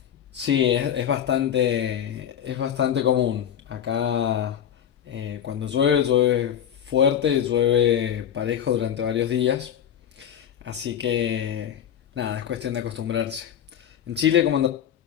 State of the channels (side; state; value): right; quieter; 9.5 dB